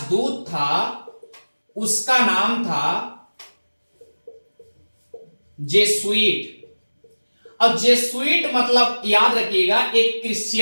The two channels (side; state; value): both; inverted; correlation -1.00